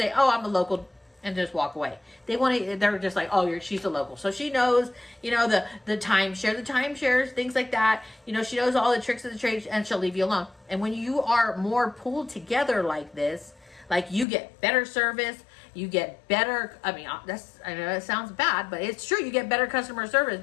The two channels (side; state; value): right; drops out; at 14.2 s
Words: oh, I'm a local, and just walk away. They're just like, oh, she's a local. So she knows, you know, the timeshares, things like that. You know, she knows all the tricks of the trade and she'll leave you alone. And when you are more pulled together like this, like you get better service, you get better, I know it sounds bad, but it's true. You get better customer service